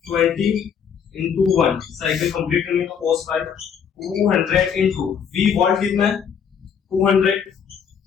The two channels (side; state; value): right; quieter; 7.4 dB